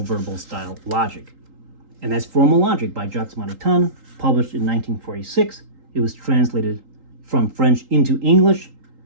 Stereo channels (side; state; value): left; late; 3.8 ms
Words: verbal style logic. And that's Formal Logic by Jacques Maritain, published in 1946. It was translated from French into English.